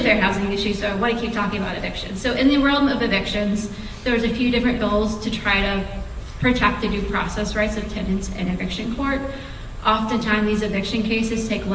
fair housing issue, so I want to keep talking about evictions. So in the realm of evictions, there was a few different bills to try to protect the due process rights of tenants in eviction court. Oftentimes these eviction cases take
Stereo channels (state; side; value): identical; both; correlation 1.00